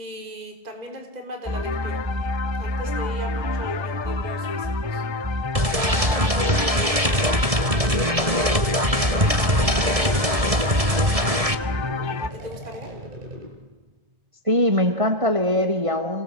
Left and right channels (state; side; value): late; left; 1.7 ms